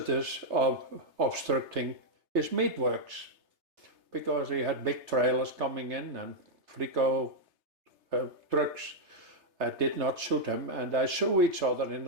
obstructing his meatworks, because he had big trailers coming in and Frico trucks did not suit him, and they sue each other in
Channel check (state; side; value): late; left; 3.3 ms